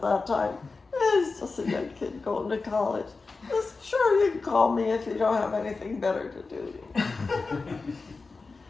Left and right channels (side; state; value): right; quieter; 4.0 dB